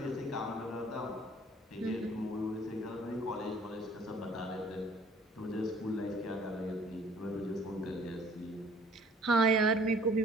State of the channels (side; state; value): both; normal; correlation 0.55